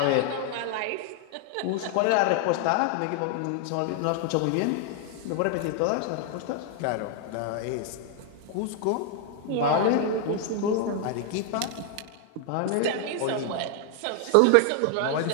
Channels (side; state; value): both; different; correlation 0.00